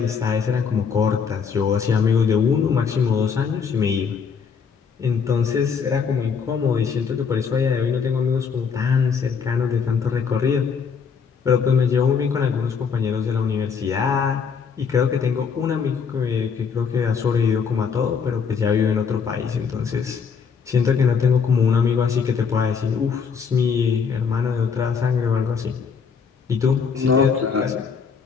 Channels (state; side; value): quieter; right; 6.1 dB